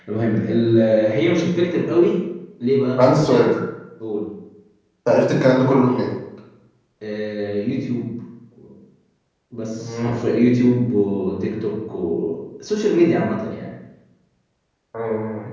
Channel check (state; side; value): identical; both; correlation 1.00